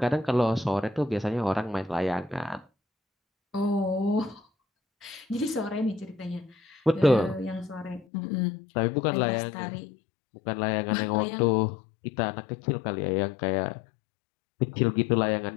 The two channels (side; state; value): right; drops out; at 8.1 s